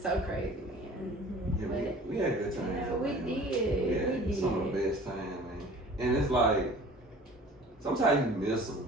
so crazy, man. Yeah, we had good times. We did. We did some of the best times, man. And it's like sometimes you miss them.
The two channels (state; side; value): normal; both; correlation 0.46